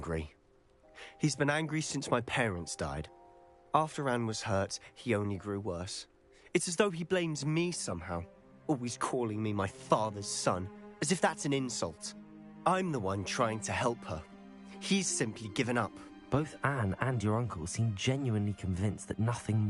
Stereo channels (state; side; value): identical; both; correlation 1.00